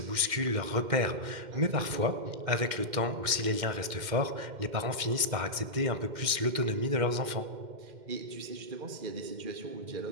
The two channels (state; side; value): late; left; 2.1 ms